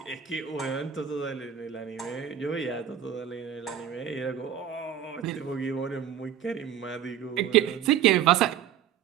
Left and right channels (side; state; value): left; quieter; 9.4 dB